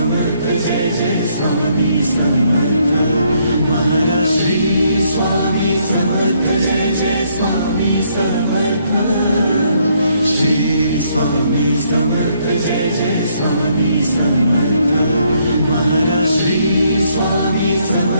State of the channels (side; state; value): both; inverted; correlation -0.71